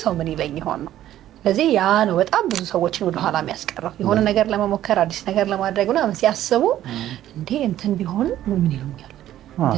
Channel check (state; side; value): quieter; left; 12.7 dB